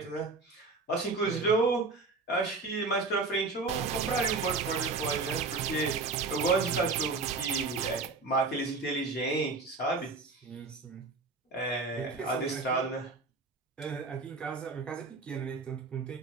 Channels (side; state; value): left; quieter; 3.9 dB